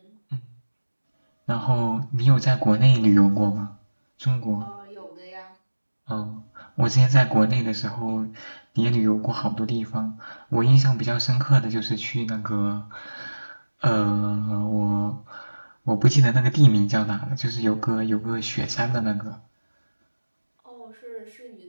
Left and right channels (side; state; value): both; inverted; correlation -1.00